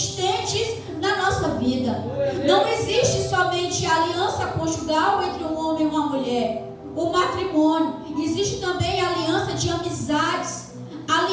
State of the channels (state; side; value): identical; both; correlation 1.00